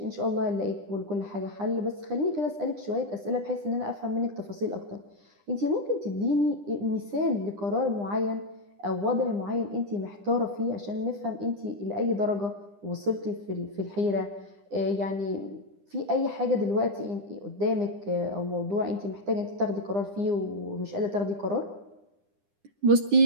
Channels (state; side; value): late; left; 9.9 ms